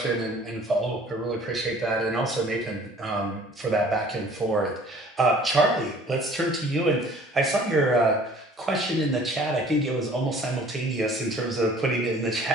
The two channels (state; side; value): normal; both; correlation 0.52